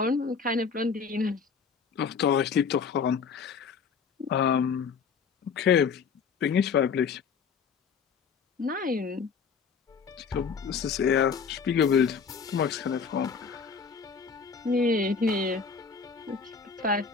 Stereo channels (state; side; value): quieter; right; 5.8 dB